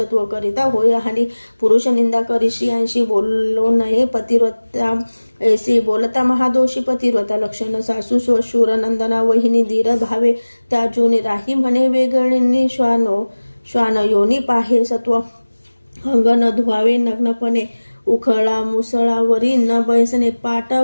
करिता होय आणि पुरुष निंदा करी स्त्रियांशी बोललो नये पतिव्रता ऐसी बोलता महादोषी पतिव्रता लक्षण सासू स्वशूर नंदना वहिनी धीर भावे त्या जुनी राही म्हणे वेगळी श्वान योनी पाहे सत्व अंग न धुवावे नग्नपणे उखळा मुसळावरी न बैसणे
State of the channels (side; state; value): both; inverted; correlation -1.00